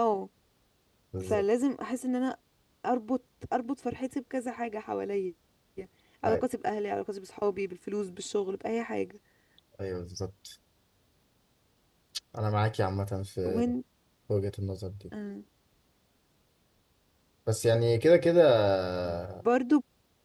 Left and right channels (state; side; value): identical; both; correlation 1.00